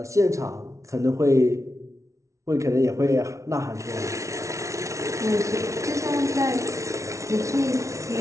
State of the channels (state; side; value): late; left; 0.14 ms